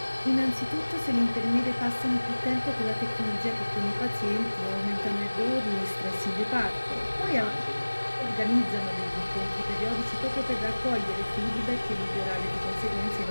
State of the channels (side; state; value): both; inverted; correlation -1.00